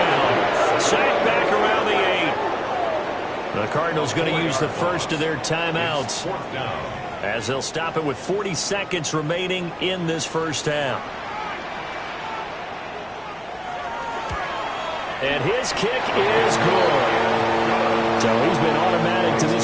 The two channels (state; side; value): identical; both; correlation 1.00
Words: Sacked back around the 8. The Cardinals going to use the first of their timeouts as they'll stop it with 40 seconds remaining in this first half. And his kick is good. So he's been automatic to